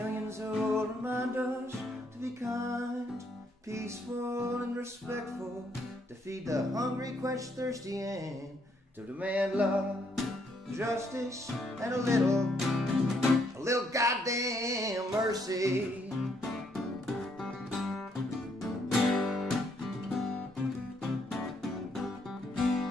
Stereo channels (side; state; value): both; normal; correlation 0.72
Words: who will remind us to be kind, peaceful and respectful, to feed the hungry, quench thirsty, and to demand love, justice, and a little goddamn mercy.